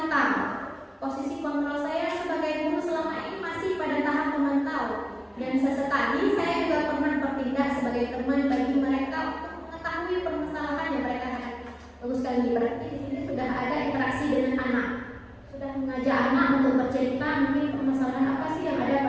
Posisi kontrol saya sebagai guru selama ini masih pada tahap pemantau. Dan sesekali saya juga pernah bertindak sebagai teman bagi mereka untuk mengetahui permasalahan yang mereka hadapi. Bagus sekali, berarti di sini sudah ada interaksi dengan anak, sudah mengajak anak untuk bercerita mungkin permasalahan apa sih yang ada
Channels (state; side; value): identical; both; correlation 1.00